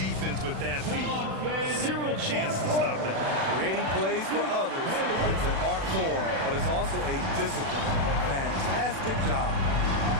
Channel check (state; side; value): late; left; 36 ms